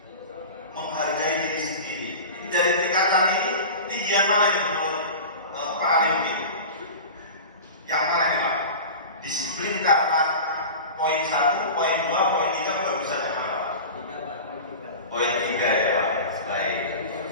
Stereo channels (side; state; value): both; inverted; correlation -0.33